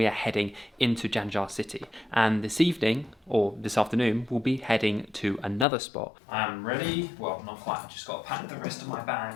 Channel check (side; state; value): right; drops out; at 5.7 s